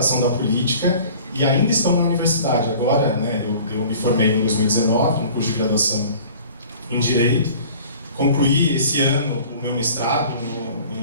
da política e ainda estão na universidade. Agora, né, eu me formei em 2019, no curso de graduação em Direito, concluí esse ano o meu mestrado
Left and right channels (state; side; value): inverted; both; correlation -0.47